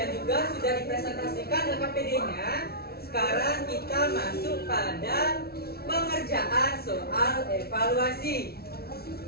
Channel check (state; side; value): late; right; 0.45 ms